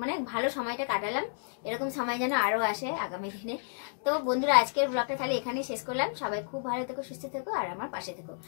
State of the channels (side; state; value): right; silent; digital silence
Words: মানে ভালো সময়টা কাটালাম, এরকম সময় যেন আরো আসে আগামী দিনে। তো বন্ধুরা, আজকের ব্লগটা তাহলে এখানেই শেষ করলাম। সবাই খুব ভালো থেকো, সুস্থ থেকো, আর আমার পাশে থেকো।